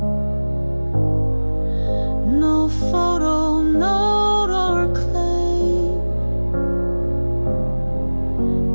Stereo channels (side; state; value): both; inverted; correlation -1.00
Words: no photo, note or claim,